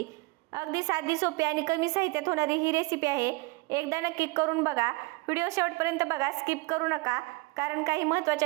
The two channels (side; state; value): left; quieter; 24.8 dB